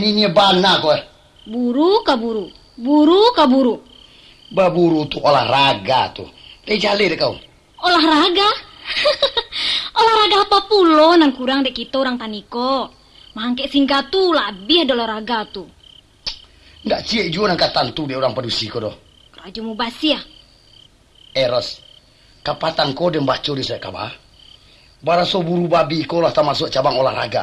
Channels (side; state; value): both; identical; correlation 1.00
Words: bana kok. Buru kaburu. Buru kaburu. Baburu tuh olahraga tuh. Jali deh kau. Olahraga? Olahraga apa pulo nan kurang dek kita orang taniko. Mangke singkat tuh lebih ada olahraga tuh. Nggak cie juga angkatan tuh dia orang padusi kau doh. Raja mu basi ya. Eros, kapatan kau dan baca di saya kabar. Baraso buru babi kau lah tak masuk cabang